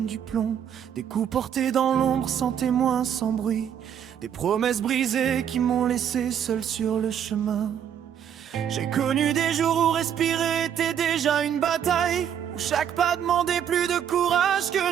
du plomb, des coups portés dans l'ombre sans témoin, sans bruit, des promesses brisées qui m'ont laissé seul sur le chemin. J'ai connu des jours où respirer était déjà une bataille, où chaque pas demandait plus de courage que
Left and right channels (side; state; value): left; quieter; 9.0 dB